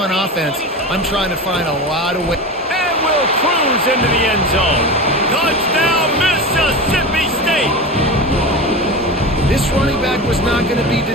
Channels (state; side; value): normal; both; correlation 0.26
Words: offense, I'm trying to find a lot of ways. And will cruise into the end zone. Touchdown, Mississippi State! This running back was not going to be